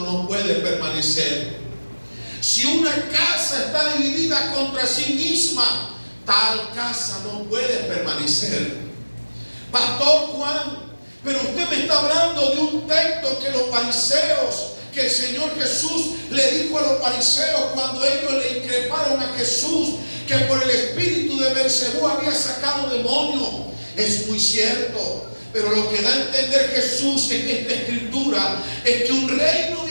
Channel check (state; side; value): inverted; both; correlation -1.00